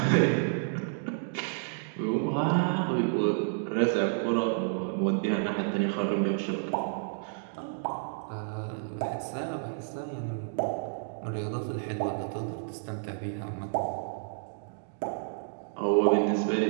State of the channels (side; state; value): left; silent; digital silence